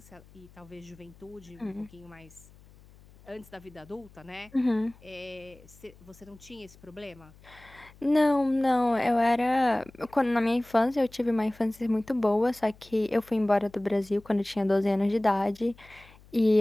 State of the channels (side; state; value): left; noise; hum, 25 dB below the sound